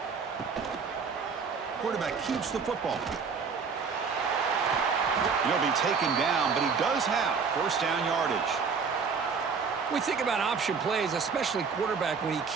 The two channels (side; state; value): left; quieter; 5.5 dB